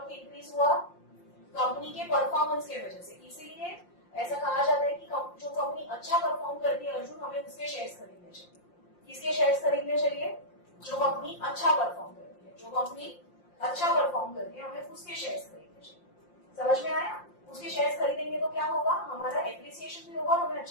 इंक्रीज हुआ? कंपनी के परफॉर्मेंस के वजह से. इसीलिए ऐसा कहा जाता है कि जो कंपनी अच्छा परफॉर्म करती है अर्जुन, हमें उसके शेयर्स खरीदने चाहिए. किसके शेयर्स खरीदने चाहिए? जो कंपनी अच्छा परफॉर्म करती है. जो कंपनी अच्छा परफॉर्म करती है हमें उसके शेयर्स खरीदने चाहिए. समझ में आया? उसके शेयर्स खरीदेंगे तो क्या होगा? हमारा एप्रिसिएशन भी होगा, हमें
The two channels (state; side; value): late; right; 5.7 ms